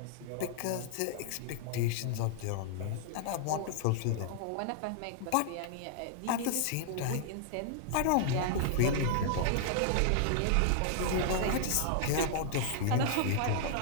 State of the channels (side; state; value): both; different; correlation -0.01